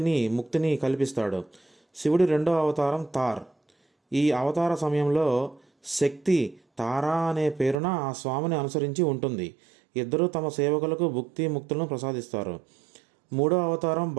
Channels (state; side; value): drops out; left; at 7.8 s